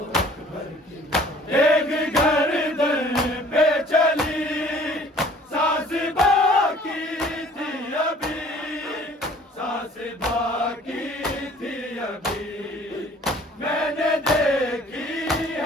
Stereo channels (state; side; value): normal; both; correlation 0.52